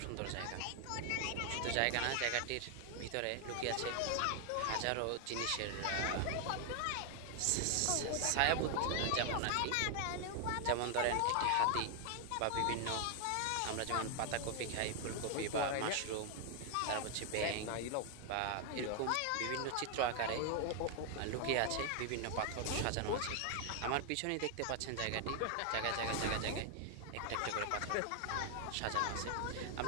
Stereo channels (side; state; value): both; different; correlation 0.00